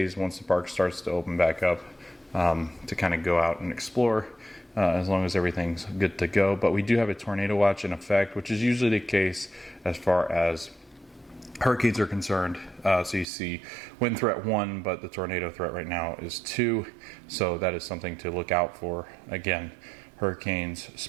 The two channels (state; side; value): drops out; left; at 13.2 s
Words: once the park starts to open back up to kind of go out and explore as long as everything's good to go. But we do have a tornado watch in effect, which is usually the case as far as hurricanes are concerned. So you see wind threat 1, but the tornado threat right now is 2. So that is something to look out for. Again, hurricanes